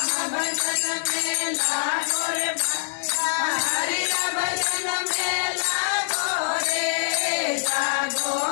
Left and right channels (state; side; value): silent; right; digital silence